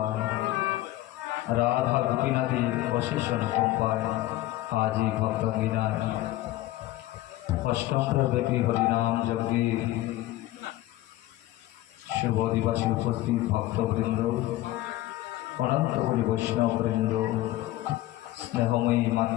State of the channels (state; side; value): quieter; right; 16.0 dB